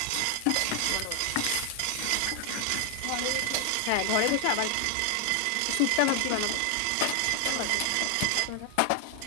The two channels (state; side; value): different; both; correlation 0.00